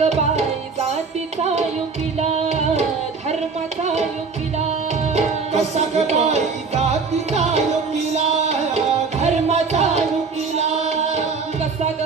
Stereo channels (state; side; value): quieter; left; 4.8 dB